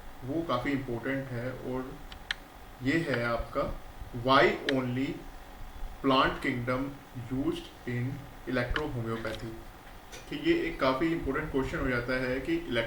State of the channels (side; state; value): both; identical; correlation 1.00